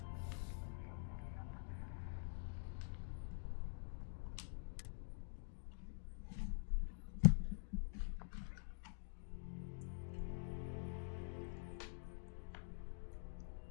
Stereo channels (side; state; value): right; silent; digital silence